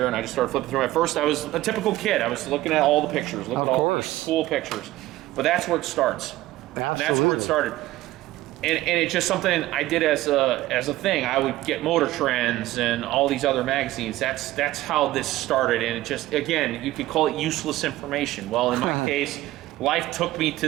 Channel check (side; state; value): left; quieter; 16.5 dB